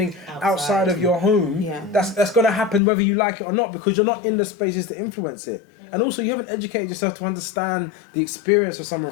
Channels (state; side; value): drops out; right; at 2.8 s